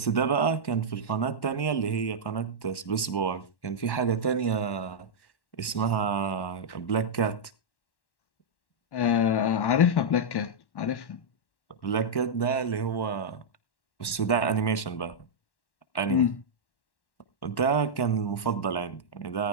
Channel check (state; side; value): late; right; 1.1 ms